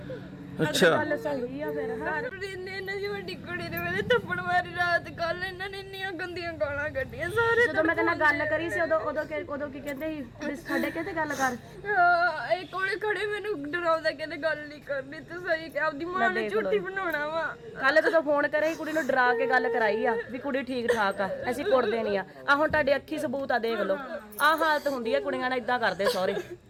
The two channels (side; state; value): both; identical; correlation 1.00